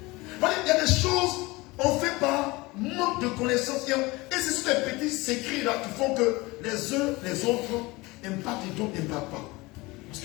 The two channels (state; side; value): quieter; right; 22.5 dB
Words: Il y a des choses on fait par manque de connaissances. Et c'est sur les petits secrets là qui font que les uns, les autres impactent et d'autres n'impactent pas. Parce